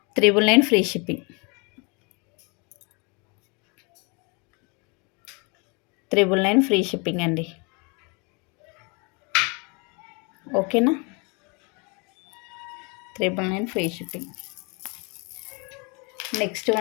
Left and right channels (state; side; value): quieter; right; 31.5 dB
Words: $999 ఫ్రీ షిప్పింగ్. 999 ఫ్రీ షిప్పింగ్ అండి. ఓకేనా. 999 ఫ్రీ షిప్పింగ్. నెక్స్ట్